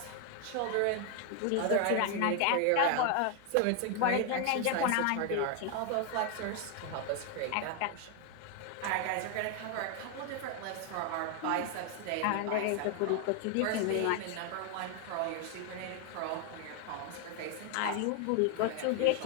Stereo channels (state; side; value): different; both; correlation 0.00